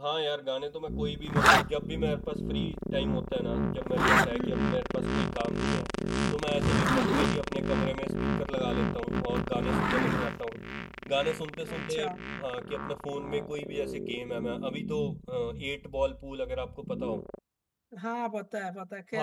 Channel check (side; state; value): both; identical; correlation 1.00